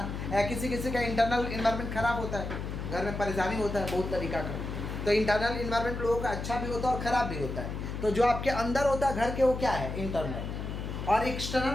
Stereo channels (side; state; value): left; noise; hum, 5 dB below the sound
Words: किसी किसी का इंटरनल एनवायरनमेंट खराब होता है, घर में परेशानी होता है बहुत तरीका का। तो इंटरनल एनवायरनमेंट लोगों का अच्छा भी होता है और ख़राब भी होता है। तो जो आपके अंदर होता है घर के, वो क्या है, इंटरनल। और